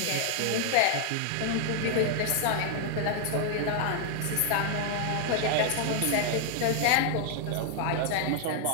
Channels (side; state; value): both; different; correlation 0.00